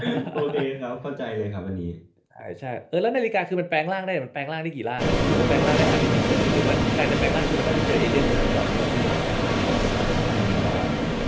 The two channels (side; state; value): both; identical; correlation 1.00